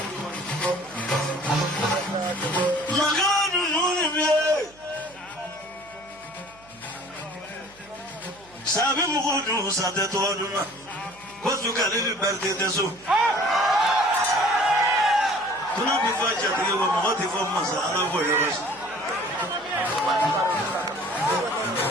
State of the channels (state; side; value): noise; right; hum, 27 dB below the sound